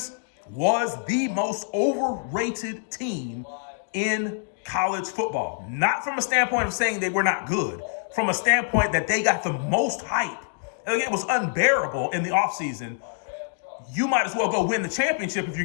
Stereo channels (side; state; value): right; silent; digital silence